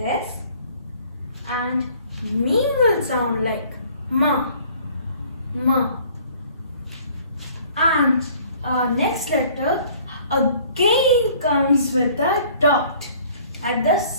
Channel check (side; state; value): both; inverted; correlation -0.54